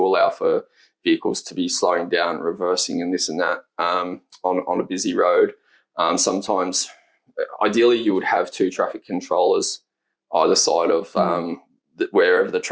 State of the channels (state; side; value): identical; both; correlation 1.00